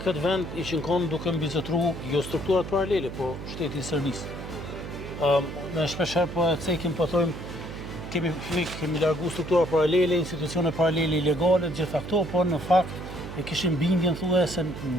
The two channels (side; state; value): right; noise; hum, 9 dB below the sound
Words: këtë vend ishin konë duke mbizetru jo strukturat paralele, po shteti i Serbisë. Ne shpesher po e cekim, po thojmë, kemi largu struktura paralele, institucione paralele ilegale, gjitha këto, po në fakt e kishim bindjen thue se